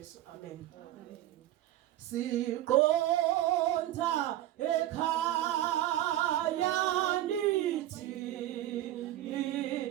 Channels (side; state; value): left; quieter; 13.9 dB